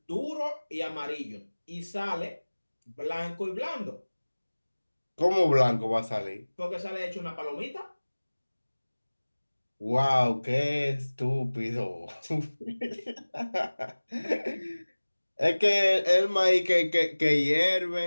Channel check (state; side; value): inverted; both; correlation -1.00